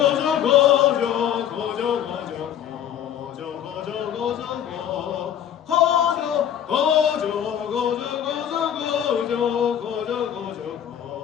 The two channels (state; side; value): quieter; right; 9.8 dB